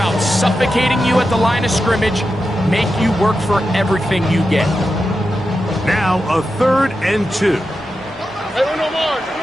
suffocating you at the line of scrimmage, make you work for everything you get. Now a 3rd and 2. Hey, no more.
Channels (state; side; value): normal; both; correlation 0.90